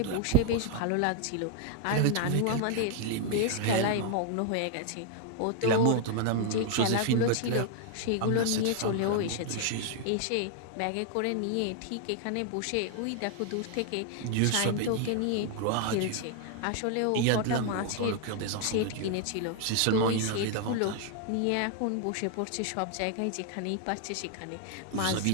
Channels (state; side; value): different; both; correlation 0.00